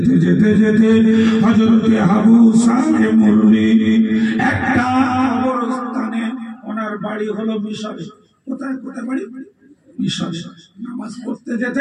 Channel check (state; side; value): identical; both; correlation 1.00